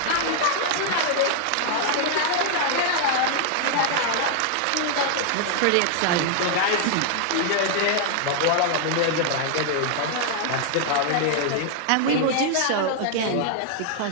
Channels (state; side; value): different; both; correlation 0.00